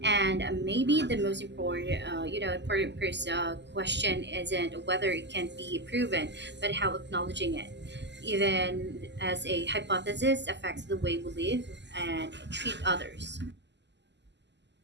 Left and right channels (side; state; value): left; late; 0.51 ms